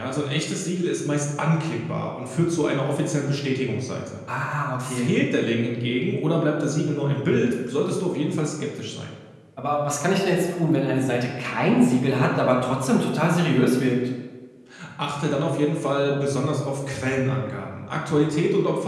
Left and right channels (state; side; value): identical; both; correlation 1.00